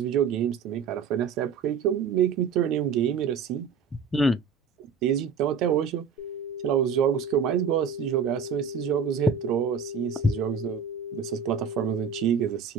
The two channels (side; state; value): left; quieter; 6.0 dB